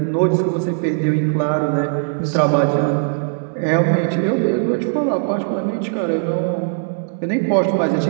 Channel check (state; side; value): silent; left; digital silence